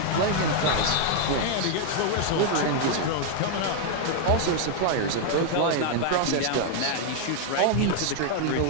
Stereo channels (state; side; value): different; both; correlation 0.00